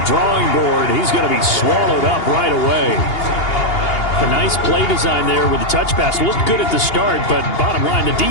drawing board. He's going to be swallowed up right away. A nice play design there with the touch pass. Looked good at the start, but bottom line, the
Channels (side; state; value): right; late; 2.8 ms